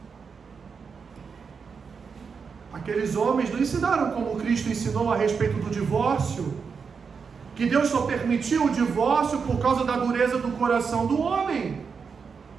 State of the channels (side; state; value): left; quieter; 5.7 dB